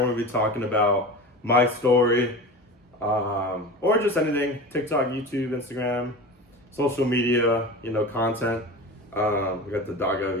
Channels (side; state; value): both; normal; correlation 0.31